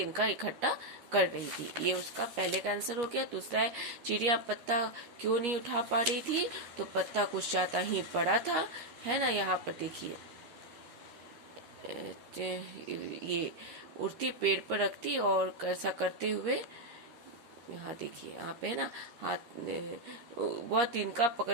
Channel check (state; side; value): late; left; 13 ms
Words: इकट्ठा कर रही थी। ये उसका पहले का आंसर हो गया। दूसरा है चिड़िया पत्ता क्यों नहीं उठा पा रही थी? तो पत्ता कुछ ज्यादा ही बड़ा था, है ना। यहाँ पर देखिए ये उड़ती पेड़ पर रखती और ऐसा करते हुए यहाँ देखिए, यहाँ पे है ना, हाथ वह तिनका